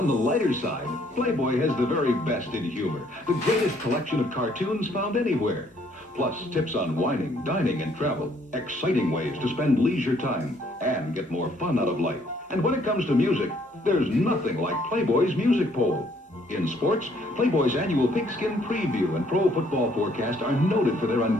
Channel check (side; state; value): both; normal; correlation 0.65